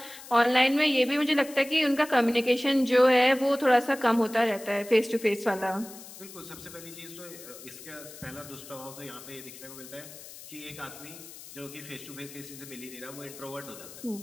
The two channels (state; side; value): noise; left; hiss, 16 dB below the sound